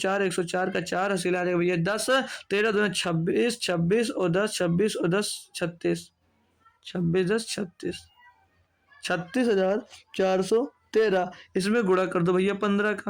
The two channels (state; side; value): identical; both; correlation 1.00